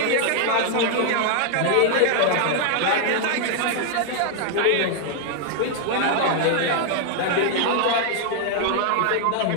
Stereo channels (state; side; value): different; both; correlation 0.00